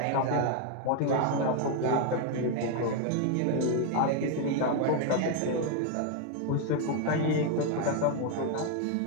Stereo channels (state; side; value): different; both; correlation 0.01